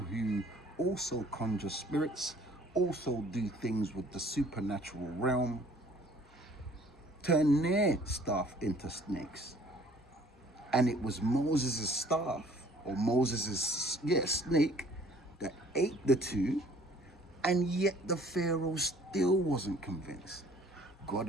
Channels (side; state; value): both; normal; correlation 0.56